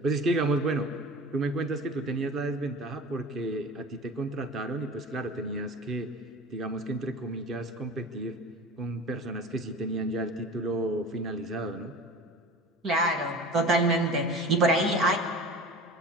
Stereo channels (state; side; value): normal; both; correlation 0.36